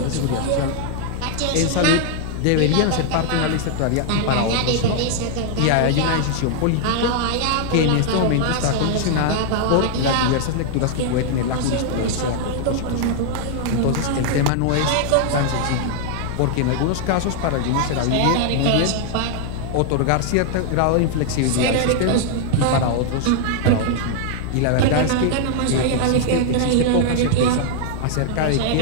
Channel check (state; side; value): different; both; correlation 0.00